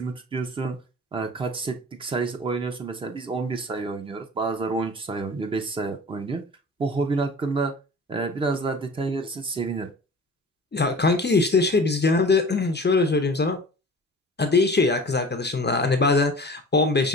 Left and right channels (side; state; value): both; normal; correlation 0.41